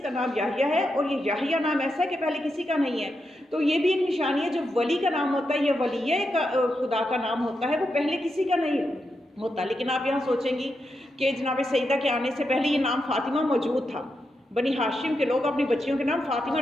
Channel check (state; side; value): normal; both; correlation 0.86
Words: کا نام یحییٰ ہے، اور یہ یحییٰ نام ایسا ہے کہ پہلے کسی کا نہیں ہے. تو یہ بھی ایک نشانی ہے، جو ولی کا نام ہوتا ہے یا ولیہ خدا کا نام ہوتا ہے وہ پہلے کسی کا نہیں ہوتا. لیکن آپ یہاں سوچیں گی کہ جناب سیدہ کے آنے سے پہلے یہ نام فاطمہ موجود تھا. بنی ہاشم کے لوگ اپنی بچیوں کے نام فاطمہ